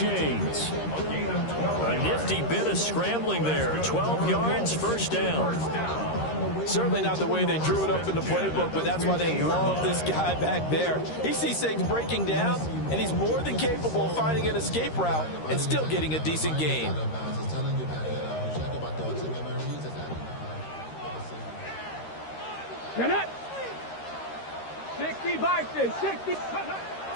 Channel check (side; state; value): right; late; 13 ms